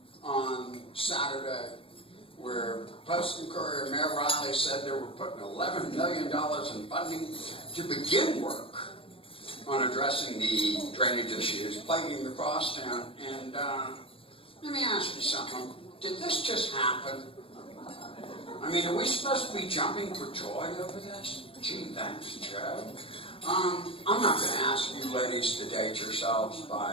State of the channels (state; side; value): late; right; 0.26 ms